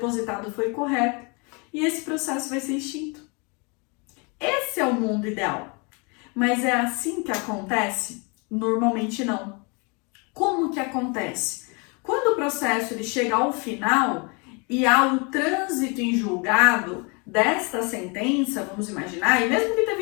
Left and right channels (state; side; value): quieter; right; 31.7 dB